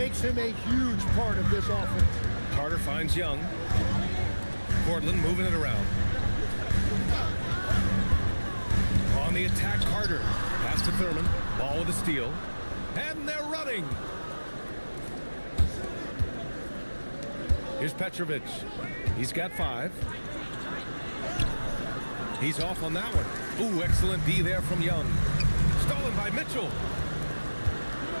him a huge part of this offense. Carter finds Young. Portland moving it around. On the attack, Carter. Pass to Thurman. Ball with a steal. And they're running. Here's Petrovic. He's got 5. He's off on that one. Ooh, excellent D there from Young. Stolen by Mitchell.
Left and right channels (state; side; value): inverted; both; correlation -1.00